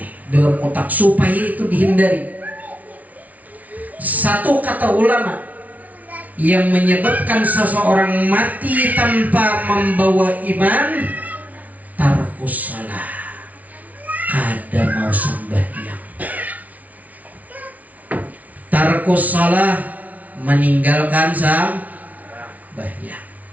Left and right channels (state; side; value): late; left; 0.072 ms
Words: dalam otak supaya itu dihindari. Satu kata ulama yang menyebabkan seseorang mati tanpa membawa iman, tarkus salah, kada mau sembahyang. Tarkus salah, meninggalkan sembahyang